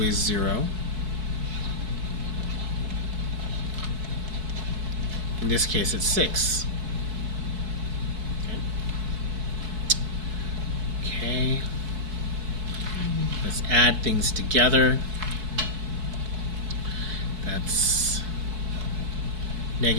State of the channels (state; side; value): late; left; 4.6 ms